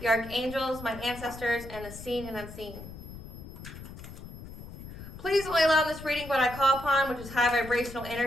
Archangels, my ancestors, and the seen and unseen. Please only allow in this reading what I call upon, which is high vibrational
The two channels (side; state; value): left; noise; rumble, 13 dB below the sound